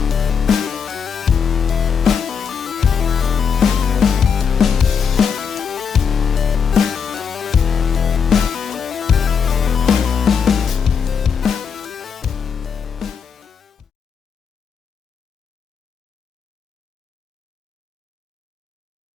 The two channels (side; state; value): right; quieter; 6.6 dB